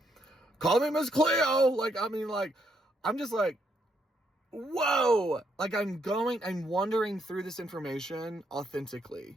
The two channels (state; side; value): normal; both; correlation 0.75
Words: call me Miss Cleo. Like, I mean, like, I'm just like, whoa. Like, I'm wandering through this information